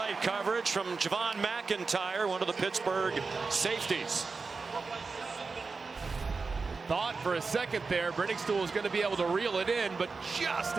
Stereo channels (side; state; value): left; quieter; 4.4 dB